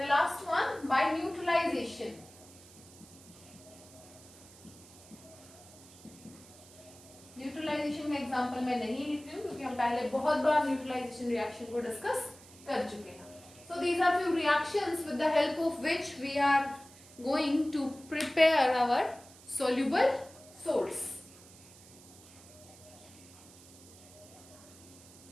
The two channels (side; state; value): right; noise; hiss, 21 dB below the sound